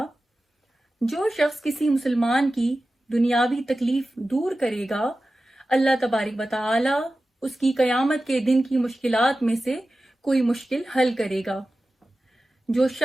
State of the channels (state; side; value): normal; both; correlation 0.95